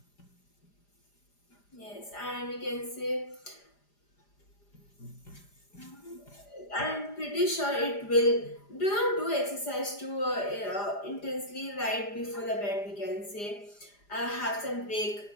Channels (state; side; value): late; right; 4.9 ms